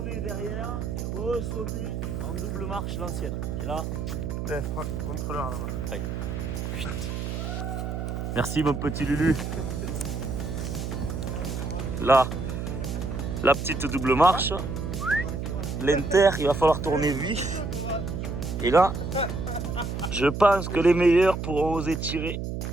derrière et ressauter en double marche l'ancienne. Et là. Contrôleur là-bas. Ouais. Merci mon petit Lulu. Là, la petite double marche. L'inter, il va falloir tourner vif. Et là, je pense que les meilleurs pourront oser tirer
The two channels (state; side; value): noise; right; hum, 4 dB below the sound